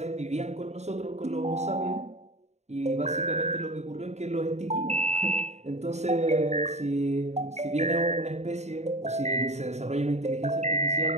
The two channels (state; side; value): late; left; 0.32 ms